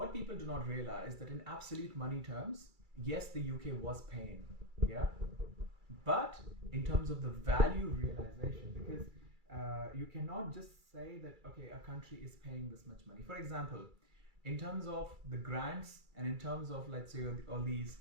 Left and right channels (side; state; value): left; late; 2.3 ms